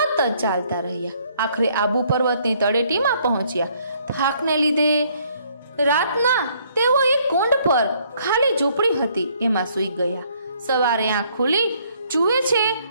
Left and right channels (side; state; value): both; inverted; correlation -0.65